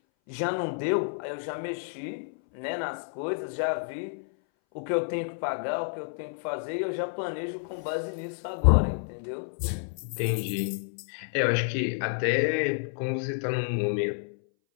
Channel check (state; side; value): silent; right; 58 dB below the other